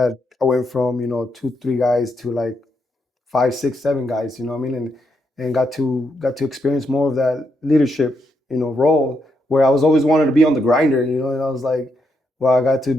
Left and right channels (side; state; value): both; normal; correlation 0.80